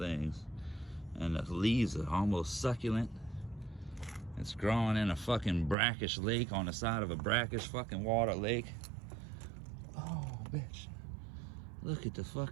And the leaves are almost succulent. It's growing in a fucking brackish lake, on the side of a brackish fucking water lake. Oh, bitch. Look at the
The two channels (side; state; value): left; drops out; at 5.8 s